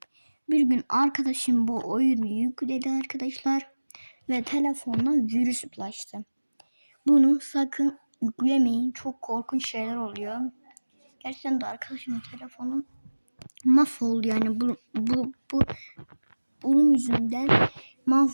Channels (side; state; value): both; inverted; correlation -1.00